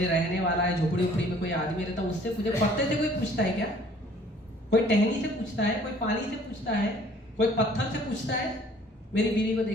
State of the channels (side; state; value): both; normal; correlation 0.56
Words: रहने वाला है झोपड़ी उपड़ी में कोई आदमी रहता उससे पूछे। पत्ते से कोई पूछता है क्या? कोई टहनी से पूछता है, कोई पानी से पूछता है, कोई पत्थर से पूछता है मेरी बीवी को